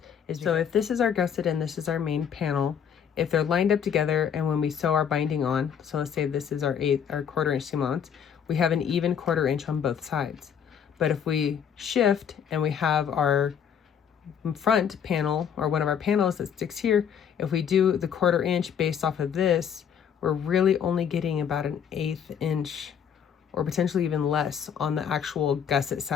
is so if this is our gusset and this is our main panel, if they're lined up together and when we sew our binding on, so let's say this is our 1/4 inch seam allowance, we have an even 1/4 inch on both sides. But if we shift and we have our front panel, or one of our panels that sticks here, if we do the 1/4 inch based off of this, we're really only getting about an 1/8 inch or potentially even less on the actual gusset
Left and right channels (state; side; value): quieter; right; 8.0 dB